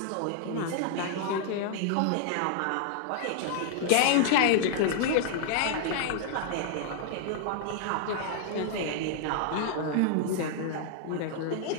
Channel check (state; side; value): different; both; correlation 0.00